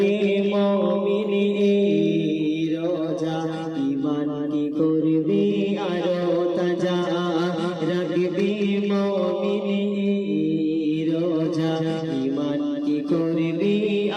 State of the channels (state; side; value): identical; both; correlation 1.00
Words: মুমিনে রোজা, ঈমান কি করবে আরো তাজা, রাখবে মুমিনে রোজা, ঈমান কি করবে